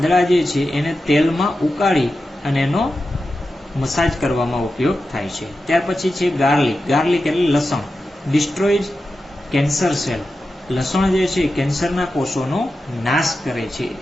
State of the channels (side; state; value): both; normal; correlation 0.91